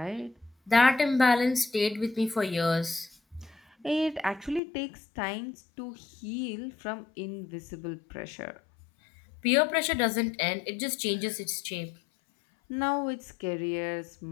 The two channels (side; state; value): right; drops out; at 4.6 s